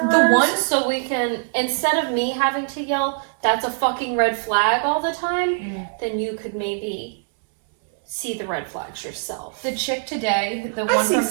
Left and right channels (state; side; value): silent; left; 64 dB below the other